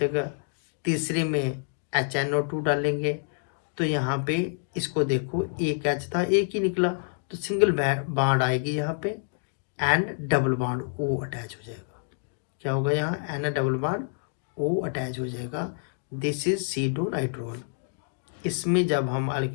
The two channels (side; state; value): right; silent; digital silence